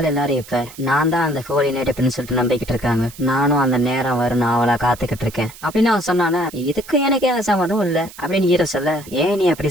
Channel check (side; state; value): right; noise; hiss, 18 dB below the sound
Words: எல்லாரும் இப்ப நான் தான் அந்த ஹோலி நைட் அப்படின்னு சொல்லிட்டு நம்பிக்கிட்டு இருக்காங்க. நானும் அந்த நேரம் வரும் அவளை காத்துக்கிட்டு இருக்கேன் அப்படின்னு அவன் சொன்னானே. இதுக்கு எனக்கு எந்த சம்மதம் இல்ல அப்படின்னு ஹீரோ சொல்ல ஏன் நீ அப்படி